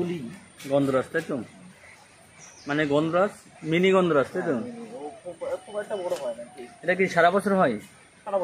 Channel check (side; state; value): both; identical; correlation 1.00